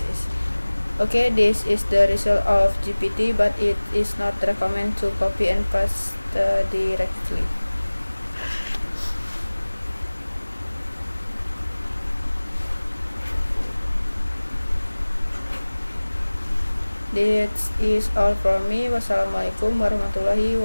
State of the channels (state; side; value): inverted; both; correlation -1.00